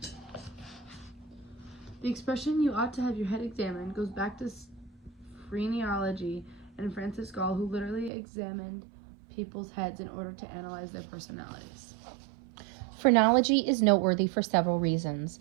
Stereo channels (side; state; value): left; drops out; at 8.1 s